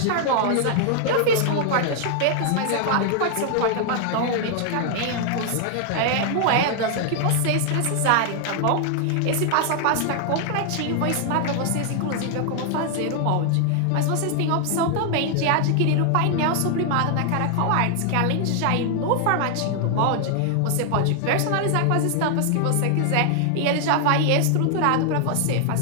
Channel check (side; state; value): both; different; correlation 0.00